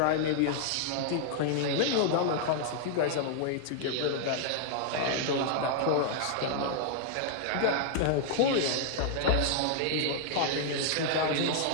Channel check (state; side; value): different; both; correlation 0.00